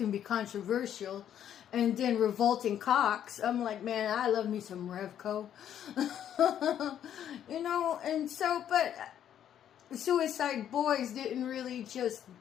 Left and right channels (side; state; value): right; quieter; 10.1 dB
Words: be controversial. And then Revolting Cocks. I'm like, man, I love me some Revco. And so, but Suicide Boys didn't really just